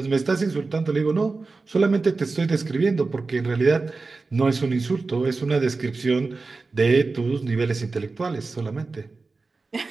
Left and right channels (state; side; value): quieter; left; 3.9 dB